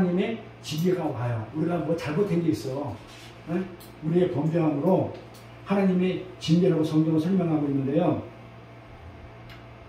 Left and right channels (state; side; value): identical; both; correlation 1.00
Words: 지혜가 와요. 우리가 뭐 잘못한 게 있어. 네? 우리의 범죄함으로 하나님의 징계라고 성경을 설명하고 있는데요.